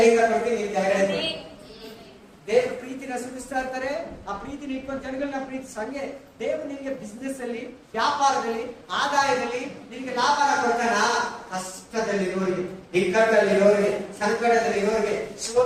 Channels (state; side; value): identical; both; correlation 1.00